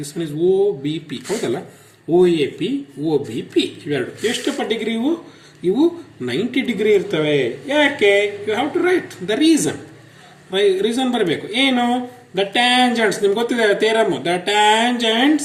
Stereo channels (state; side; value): identical; both; correlation 1.00